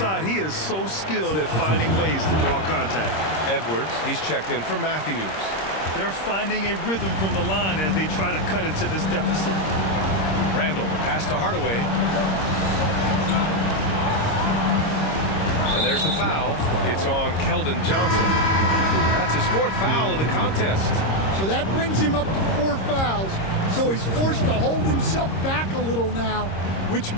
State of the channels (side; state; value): right; late; 26 ms